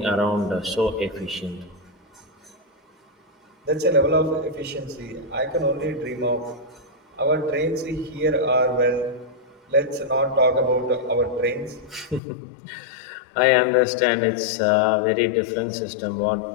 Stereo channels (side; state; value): right; drops out; at 12.2 s